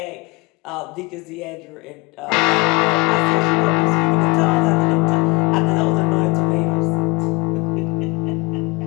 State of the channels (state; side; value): quieter; right; 26.6 dB